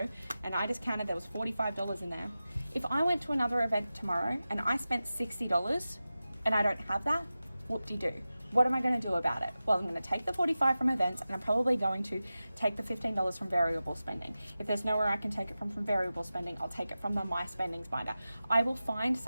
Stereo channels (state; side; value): inverted; both; correlation -0.94